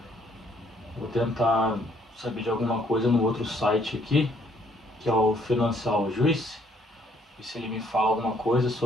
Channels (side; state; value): both; normal; correlation 0.66